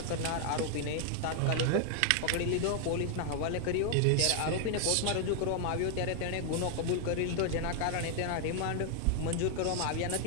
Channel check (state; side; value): different; both; correlation 0.00